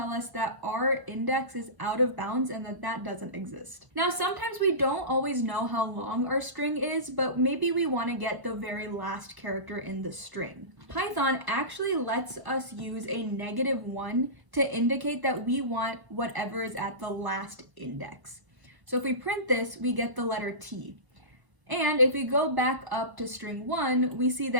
us that our index is out of bounds and that doesn't exist. Now, sometimes we don't always know how long our string is, but maybe we want to get the very last character in the string. Python actually lets us use a -1 to indicate that we want whatever is at the last index. So if we print this, we get the letter T. And if we go back up to string 1, we see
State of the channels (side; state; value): left; late; 1.0 ms